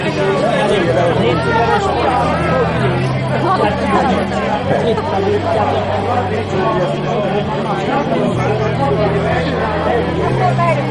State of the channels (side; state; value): both; identical; correlation 1.00